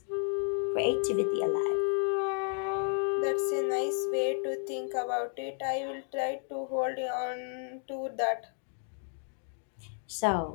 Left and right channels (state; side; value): silent; right; 56 dB below the other